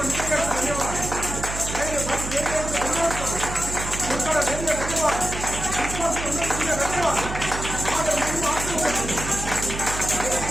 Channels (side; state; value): right; noise; hum, 7 dB below the sound